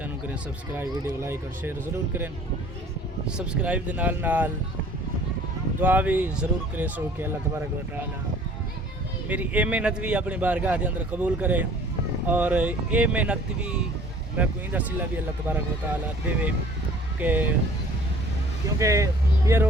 کریں سبسکرائب ویڈیو لائک اور شیئر ضرور کریں سبسکرائب دے نال نال دعا بھی ضرور کرے سو کہ اللہ تبارک و تعالی میری اے محنت بھی اپنی بارگاہ دے اندر قبول کرے اور اے محنت بھی میں کوئی دا صلہ بھی اللہ تبارک و تعالی دے کہ کیونکہ یہ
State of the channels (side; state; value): both; normal; correlation 0.51